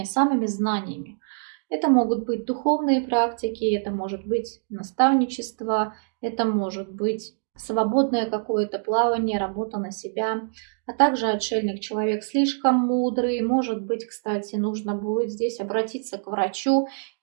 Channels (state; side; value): silent; left; digital silence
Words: самыми знаниями. Это могут быть духовные практики, это может быть наставничество, это может быть свободное какое-то плавание, работа на себя. А также отшельник — человек слишком мудрый. Может быть, кстати, нужно будет здесь обратиться к врачу,